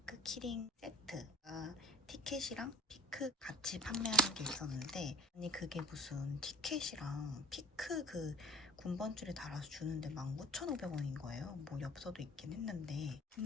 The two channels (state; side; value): normal; both; correlation 0.47